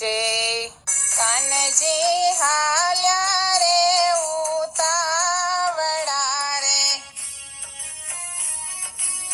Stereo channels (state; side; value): identical; both; correlation 1.00